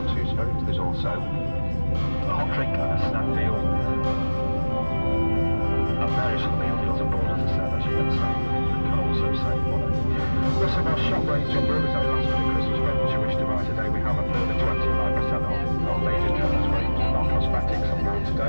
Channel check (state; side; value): inverted; both; correlation -1.00